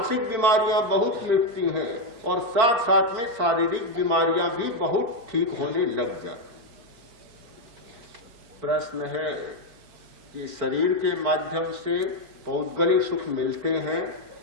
बीमारियां बहुत मिटती हैं, और साथ साथ में शारीरिक बीमारियां भी बहुत ठीक होने लग जाती। प्रश्न है कि शरीर के माध्यम से पौद्गलिक सुख मिलते हैं,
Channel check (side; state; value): left; late; 4.5 ms